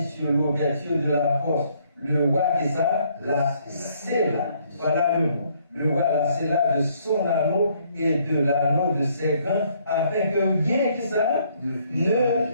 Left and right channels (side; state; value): both; inverted; correlation -0.67